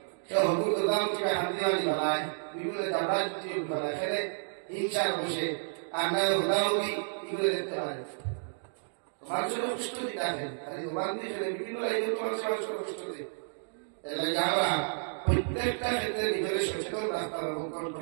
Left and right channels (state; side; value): silent; left; digital silence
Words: কেউ হকুর দাম থেকে হাতি বানায় বিভিন্ন জাবড়া বানায় ফেলে হিংসার বসে আর না হুদাহুদি এগুলো দেখতে পারে মানুষের কষ্ট দিতে আসেন বিভিন্ন লাইনে তোমার মানুষের কষ্ট দিই আমরা প্রত্যেকটা ক্ষেত্রে নিজের সচেতন রাখতাম এবং